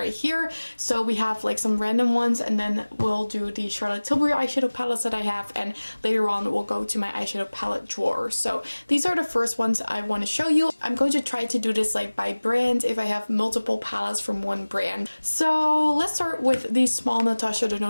here. So we have like some random ones, and then we'll do the Charlotte Tilbury eyeshadow palettes that I have, and later on we'll go to my eyeshadow palette drawer. So these are the first ones I want to show you. I'm going to try to do this like by brand if I have multiple palettes from one brand. So let's start with the small Natasha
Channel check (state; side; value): inverted; both; correlation -1.00